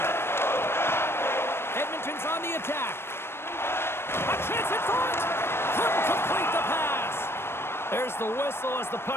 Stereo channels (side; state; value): right; late; 0.12 ms